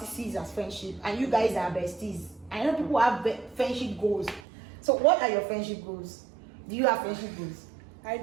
sees as friendship, and you guys are besties. I know people have friendship goals. So what are your friendship goals? Do you have friendship goals? I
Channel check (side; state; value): left; drops out; at 4.4 s